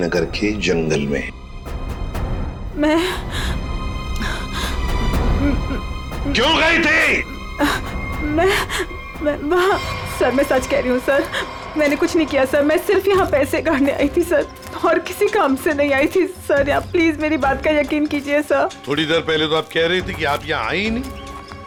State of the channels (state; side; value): identical; both; correlation 1.00